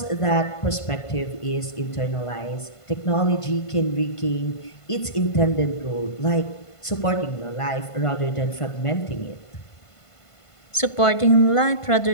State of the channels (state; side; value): late; right; 1.5 ms